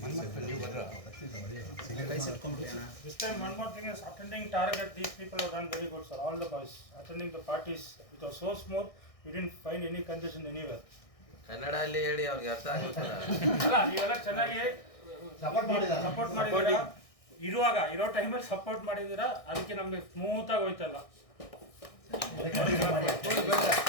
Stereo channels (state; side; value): late; right; 1.6 ms